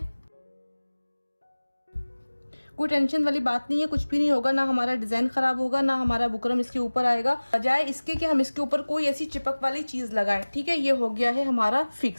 कोई टेंशन वाली बात नहीं है, कुछ भी नहीं होगा, ना हमारा डिजाइन खराब होगा, ना हमारा बुकरम इसके ऊपर आएगा, बजाय इसके कि हम इसके ऊपर कोई ऐसी चिपक वाली चीज लगाएं। ठीक है, ये हो गया है हमारा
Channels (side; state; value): both; inverted; correlation -1.00